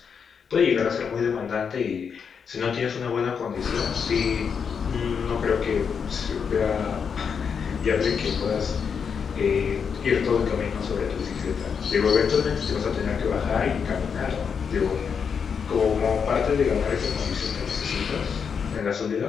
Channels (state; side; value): quieter; right; 6.5 dB